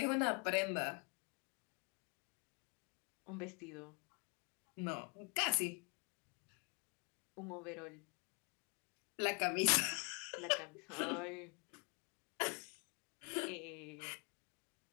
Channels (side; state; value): right; quieter; 33.8 dB